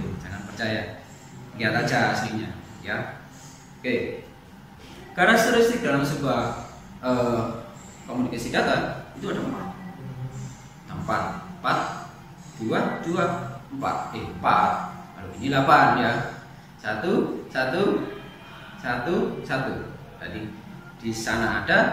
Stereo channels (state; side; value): identical; both; correlation 1.00